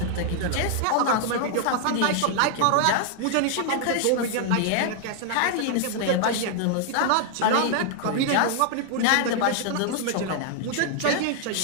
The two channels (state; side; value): different; both; correlation 0.00